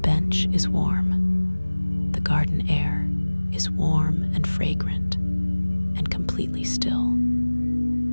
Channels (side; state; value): both; inverted; correlation -1.00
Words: is warm. The garden air is warm and fragrant and completely still.